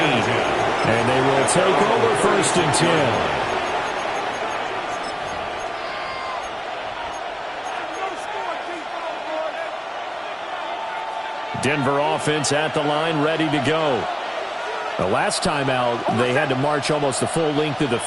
And they will take over first and 10. Denver offense at the line, ready to go. The last time out, they had to march almost the full length of the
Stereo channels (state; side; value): identical; both; correlation 1.00